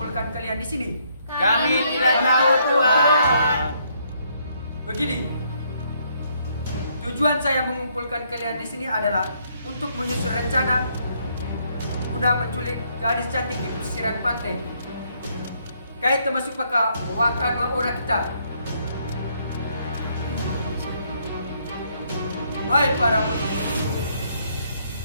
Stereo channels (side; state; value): both; inverted; correlation -0.70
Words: kalian di sini? Kami tidak tahu, Tuan. Begini, tujuan saya mengumpulkan kalian di sini adalah untuk menyusun rencana guna menculik gadis cantik di pesisir pantai. Kait termasuk pakai wakan orang kita. Hai para penulis,